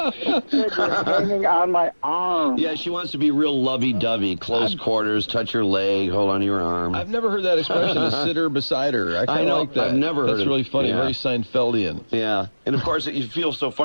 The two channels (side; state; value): both; inverted; correlation -1.00